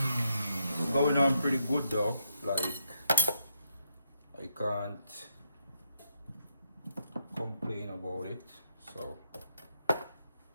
It's going on pretty good though. Like, I can't complain about it. So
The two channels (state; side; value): inverted; both; correlation -0.78